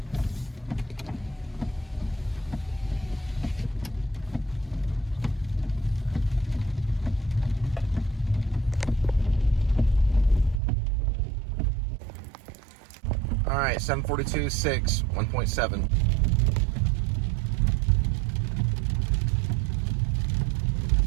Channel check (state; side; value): drops out; left; at 10.6 s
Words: All right, 742.6, 1.7.